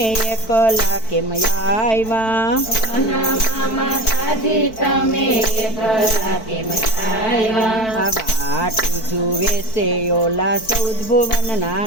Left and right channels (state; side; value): late; right; 4.5 ms